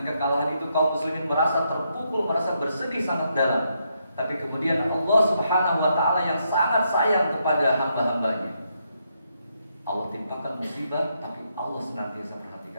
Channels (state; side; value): inverted; both; correlation -0.79